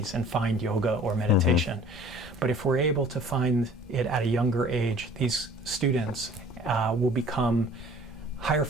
and find yoga or meditation. But if we're able to find it at a younger age, these students will become higher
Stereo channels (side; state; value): both; normal; correlation 0.49